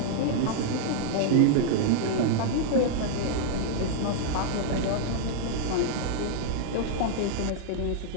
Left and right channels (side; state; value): both; different; correlation -0.01